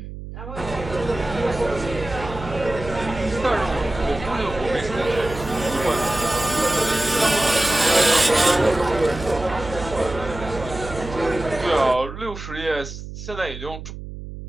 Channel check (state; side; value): noise; right; hum, 11 dB below the sound